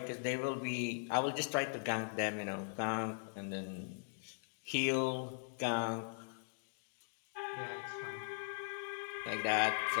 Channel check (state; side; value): silent; right; digital silence